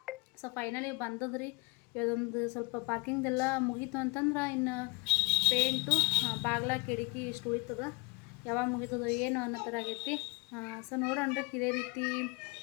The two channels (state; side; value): quieter; right; 27.6 dB